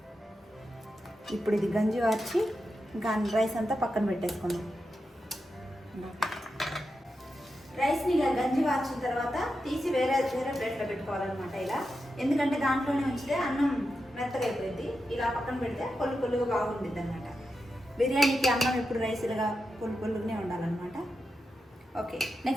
ఇప్పుడు ఇది గంజి వార్చి ఇంకా రైస్ అంతా పక్కన పెట్టేసుకున్నాం. రైస్ని ఇలా గంజి వార్చిన తర్వాత తీసి వేరే ప్లేట్లో పెట్టుకోవాలన్నమాట ఇలా. ఎందుకంటే దాంట్లోనే ఉంచితే అన్నం మెత్తగా అయిపోయింది. ఇలా పక్కన పెడితే పొల్లుగా బాగుంటుంది అనమాట. బిర్యానీకి అన్నం ఎప్పుడు రైస్ ఇలాగా పొల్లుగానే ఉండాలన్నమాట. ఓకే,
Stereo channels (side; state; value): both; normal; correlation 0.88